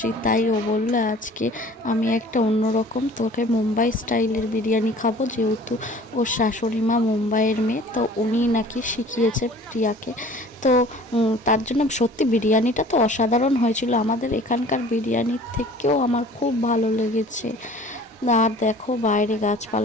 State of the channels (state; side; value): normal; both; correlation 0.48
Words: তাই ও বললো আজকে আমি একটা অন্যরকম তোকে মুম্বাই স্টাইলের বিরিয়ানি খাবো, যেহেতু ওর শাশুড়ি মা মুম্বাইয়ের মেয়ে, তো উনি নাকি শিখিয়েছে প্রিয়াকে। তো তার জন্য সত্যি বিরিয়ানিটা তো অসাধারণ হয়েছিল, আমাদের এখানকার বিরিয়ানির থেকেও আমার খুব ভালো লেগেছে। আর দেখো বাইরে